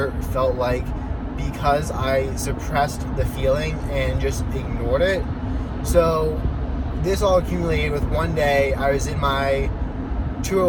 felt like because I suppressed the feeling and just ignored it. So this all accumulated with one day I was in my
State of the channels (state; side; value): identical; both; correlation 1.00